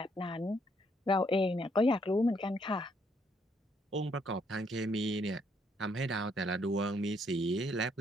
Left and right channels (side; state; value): both; normal; correlation 0.71